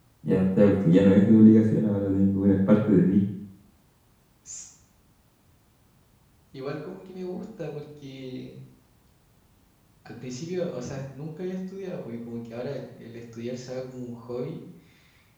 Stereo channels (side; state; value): both; identical; correlation 1.00